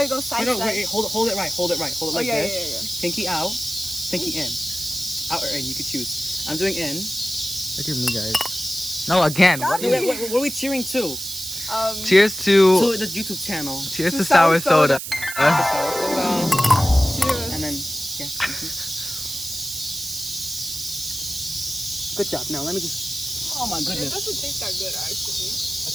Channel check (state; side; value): noise; right; hiss, 7 dB below the sound